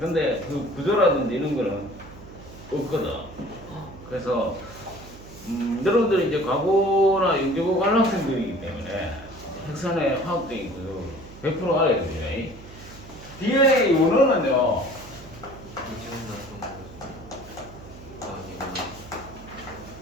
그 구조라든지 이런 거는 없거든. 그래서 여러분들이 이제 과거나 연구고 관람생들이기 때문에 핵산의 화학적인 구조 100% 알아야 됩니다. DNA 원어는요.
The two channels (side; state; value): right; noise; hum, 17 dB below the sound